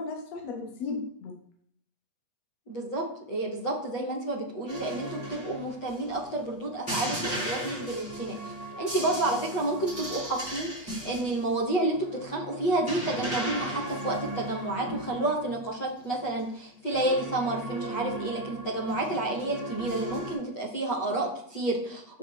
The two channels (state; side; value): late; right; 8.2 ms